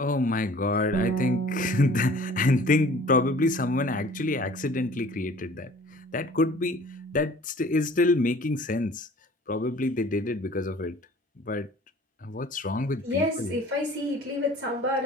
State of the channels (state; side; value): normal; both; correlation 0.49